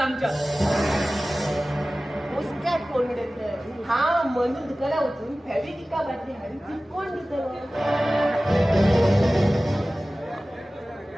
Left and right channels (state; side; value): normal; both; correlation 0.97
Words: मुस्काट कोण देत हा म्हणून दुकाना उचलून फॅब्रिका बाटली हाडी ती कोण देत